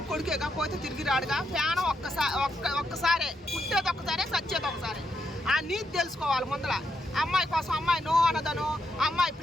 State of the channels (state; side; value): normal; both; correlation 0.81